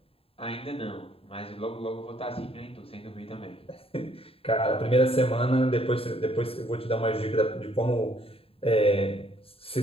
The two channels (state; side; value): late; right; 0.27 ms